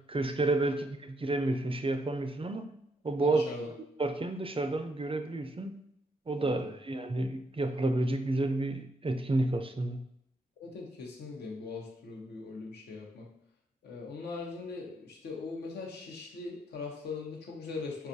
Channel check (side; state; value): both; normal; correlation 0.76